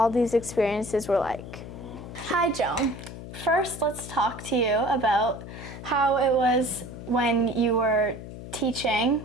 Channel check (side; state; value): left; noise; hum, 12 dB below the sound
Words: these experiences were like. Hi Joan. First, let's talk to you about how it was when you were